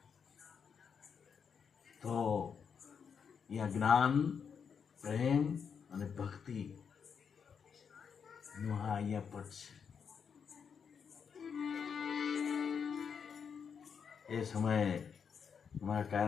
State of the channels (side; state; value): right; quieter; 6.7 dB